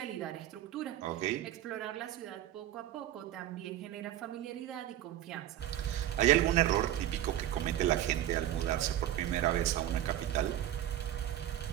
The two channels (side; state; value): left; quieter; 12.5 dB